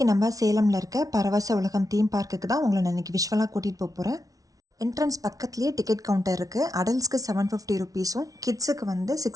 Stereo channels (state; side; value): late; left; 0.18 ms